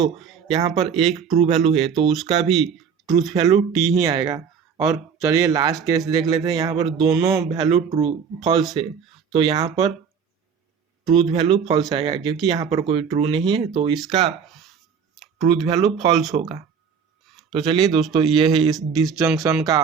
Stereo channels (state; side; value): quieter; left; 6.7 dB